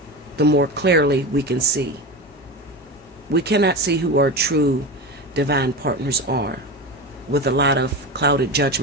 the more clearly we can see. We cannot see who our true divine partners are with a lot of clouded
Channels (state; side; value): normal; both; correlation 0.24